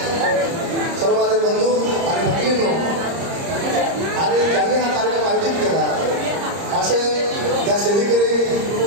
सर्व माझे बंधू आणि भगिनींनो आणि ज्यांनी हा कार्यक्रम आयोजित केला असे या सेवेकरी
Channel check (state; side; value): late; left; 30 ms